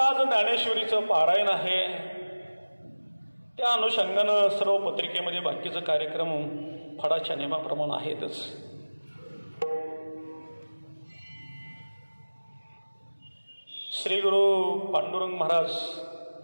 ज्ञानेश्वरीचं पारायण आहे. त्या अनुषंगानं सर्व पत्रिकेमध्ये बाकीचे कार्यक्रम फडाच्या नियमाप्रमाणे आहेतच. श्री गुरु पांडुरंग महाराज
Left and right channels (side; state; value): both; inverted; correlation -1.00